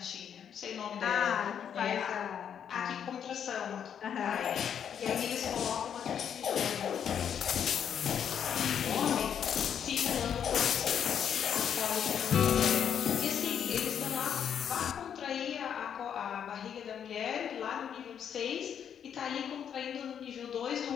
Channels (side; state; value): right; quieter; 8.5 dB